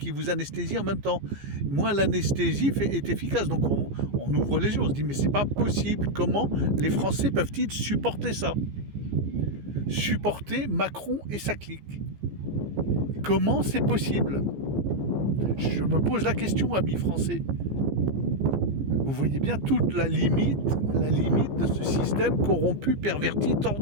vous anesthésie en même temps, moins l'anesthésie est efficace. Donc on ouvre les yeux, on se dit mais c'est pas possible, comment les Français peuvent-ils supporter ça? Supporter Macron et sa clique. Comment c'est possible? Je me pose la question, amis français. Vous voyez bien toute la limite de ce système corrompu, perverti,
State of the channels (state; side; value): late; left; 15 ms